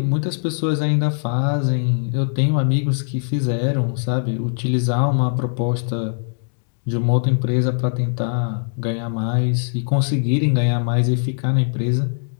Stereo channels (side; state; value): right; silent; digital silence